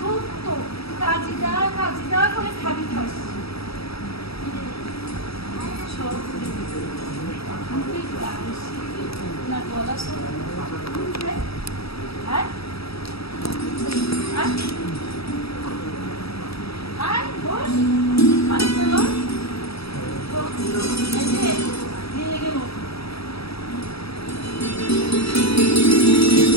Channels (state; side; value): late; right; 0.77 ms